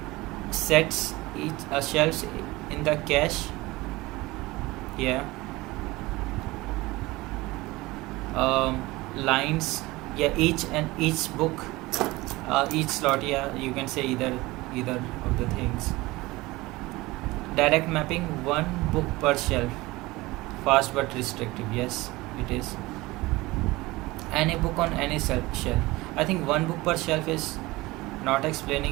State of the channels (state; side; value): quieter; left; 20.6 dB